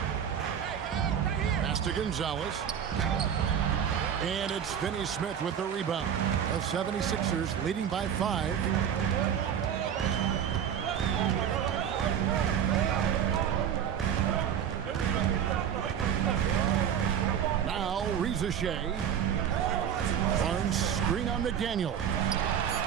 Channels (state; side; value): quieter; left; 8.7 dB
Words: Pass to Gonzalez. And it's Finney Smith with the rebound. The 76ers leading by 5. Rizachet. Barnes screen on McDaniel.